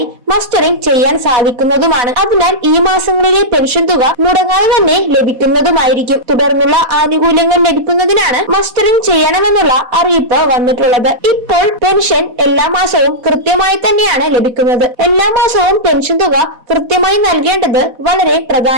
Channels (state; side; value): late; left; 4.1 ms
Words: മസ്റ്ററിംഗ് ചെയ്യാൻ സാധിക്കുന്നതുമാണ്. അതിനാൽ ഈ മാസങ്ങളിലെ പെൻഷൻ തുക മുടങ്ങാതെ തന്നെ ലഭിക്കുന്നതുമായിരിക്കും. തുടർന്നുള്ള ആനുകൂല്യങ്ങൾ ലഭിക്കുന്നതിനാണ് മസ്റ്ററിംഗ് ചെയ്യണമെന്നുള്ള അറിയിപ്പ് വന്നിട്ടുള്ളത്. ഇപ്പോൾ പെൻഷൻ എല്ലാ മാസവും കൃത്യമായി തന്നെയാണ് ലഭിക്കുന്നത്. എല്ലാ മാസവും പെൻഷൻ തുക കൃത്യമായി നൽകേണ്ടത് വളരെ